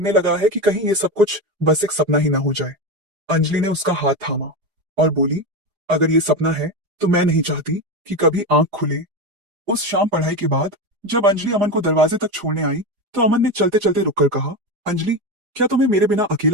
लगा है कि कहीं ये सब कुछ बस एक सपना ही ना हो जाए। अंजलि ने उसका हाथ थामा और बोली, अगर ये सपना है तो मैं नहीं चाहती कि कभी आंख खुले। उस शाम पढ़ाई के बाद जब अंजलि अमन को दरवाजे तक छोड़ने आई, तो अमन ने चलते चलते रुककर कहा, अंजलि, क्या तुम्हें मेरे बिना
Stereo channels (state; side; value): late; left; 4.9 ms